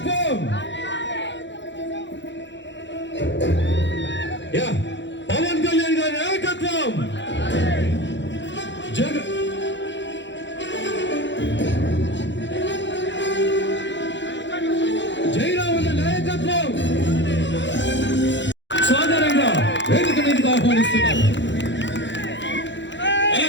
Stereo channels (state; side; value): late; right; 0.53 ms